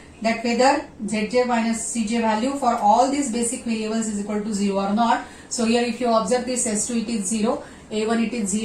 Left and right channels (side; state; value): both; identical; correlation 1.00